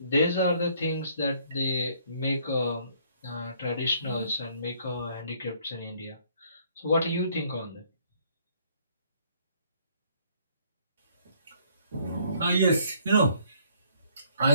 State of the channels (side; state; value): both; inverted; correlation -0.63